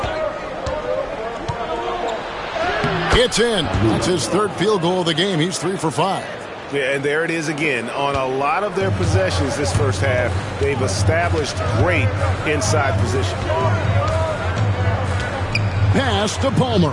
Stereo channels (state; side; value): identical; both; correlation 1.00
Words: It's in. That's his third field goal of the game. He's 3 for 5. Yeah, and there it is again. On a lot of their possessions this first half, they've established great inside position. Pass to Palmer.